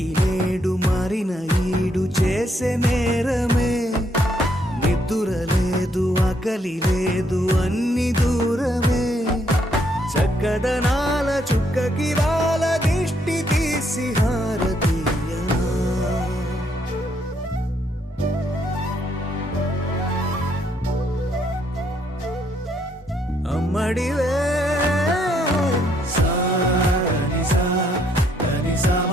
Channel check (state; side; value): normal; both; correlation 0.72